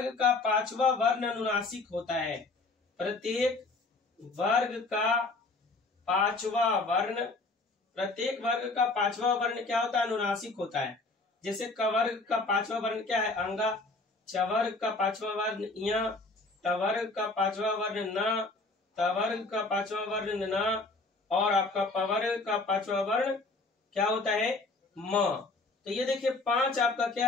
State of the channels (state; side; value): quieter; right; 3.4 dB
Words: का 5वां वर्ण अनुनासिक होता है। प्रत्येक वर्ग का 5वां वर्ण प्रत्येक वर्ग का पांचवा वर्ण क्या होता है? अनुनासिक होता है। जैसे कवर्ग का पांचवा वर्ण क्या है? अंगा। चवर्ग का पांचवा वर्ण य, टवर्ग का पांचवा वर्ण न, तवर्ग का पांचवा वर्ण न, और आपका पवर्ग का पांचवा वर्ण क्या होता है? म। तो ये देखिए 5 आपका क्या